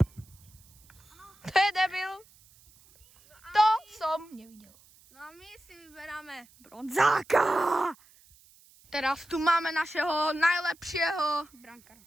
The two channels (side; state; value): right; noise; hiss, 27 dB below the sound